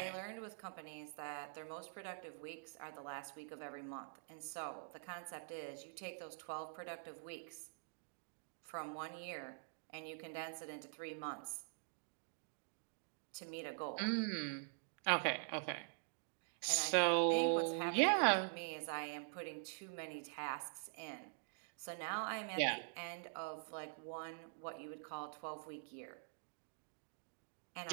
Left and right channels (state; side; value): silent; left; digital silence